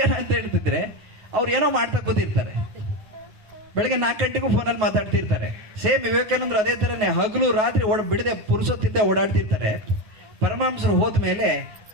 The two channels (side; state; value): left; late; 9.4 ms